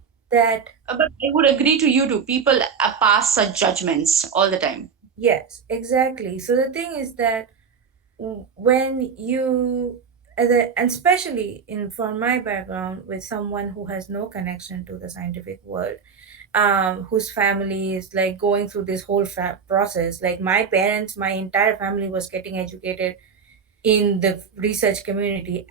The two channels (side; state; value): left; quieter; 6.2 dB